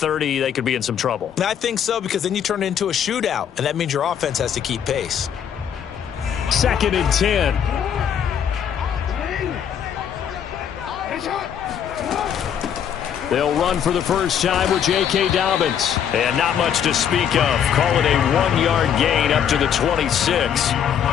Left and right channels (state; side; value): quieter; right; 8.7 dB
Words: they could be in some trouble. And I think so, because then you turn it into a shootout, and that means your offense has to keep pace. 2nd and 10. They'll run for the first time with J.K. Dobbins. And not much to speak of. Call it a 1-yard gain up to the 26.